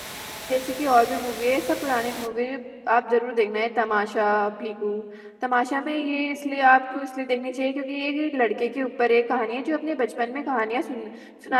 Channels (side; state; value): both; identical; correlation 1.00